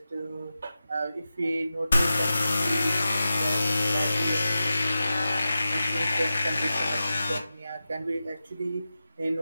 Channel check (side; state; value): both; inverted; correlation -0.92